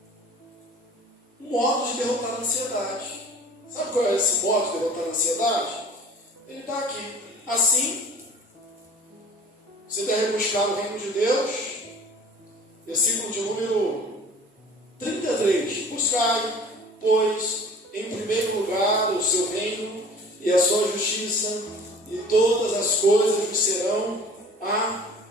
um modo de derrotar a ansiedade. Sabe qual é esse modo de derrotar a ansiedade? Ele está aqui. Assim, você deve buscar o reino de Deus, versículo de número 33. Buscai, pois, em primeiro lugar o seu reino e a sua justiça, e todas as coisas vos serão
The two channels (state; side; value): normal; both; correlation 0.46